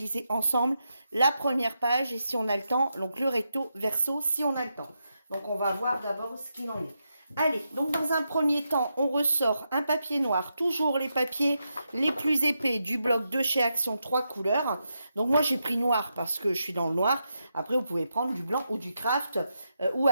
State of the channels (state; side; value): inverted; both; correlation -0.85